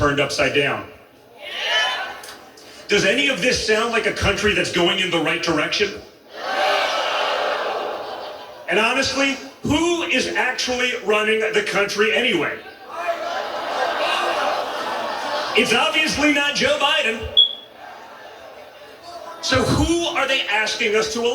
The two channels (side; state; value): both; identical; correlation 1.00